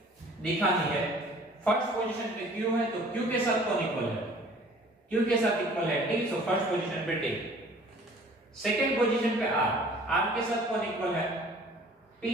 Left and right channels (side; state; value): both; normal; correlation 0.51